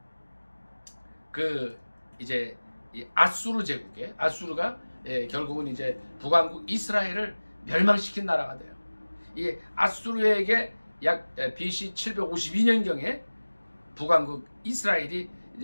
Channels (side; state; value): both; inverted; correlation -1.00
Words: 그 이제 이 아수르 제국에 아수르가 결국은 이제 북왕국 이스라엘을 멸망시킨 나라가 돼요. 이 아수르에게 약 BC 752년경에 북왕국 이스라엘이